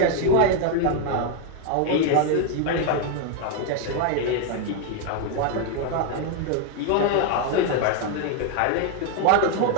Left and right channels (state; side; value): different; both; correlation 0.01